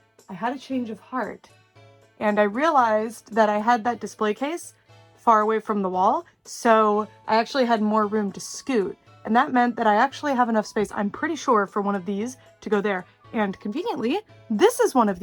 I had a change of heart, and I realized that I had that display case far away from the wall, so I actually had more room to scoot. And that meant that I actually have enough space, I'm pretty sure, for one of these to go there. And conveniently, this is one of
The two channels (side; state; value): both; identical; correlation 1.00